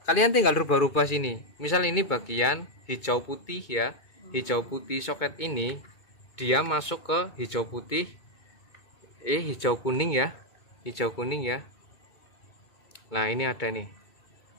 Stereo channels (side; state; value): right; late; 2.3 ms